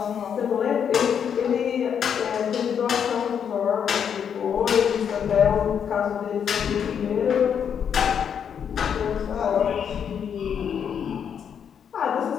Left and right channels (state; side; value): quieter; right; 7.9 dB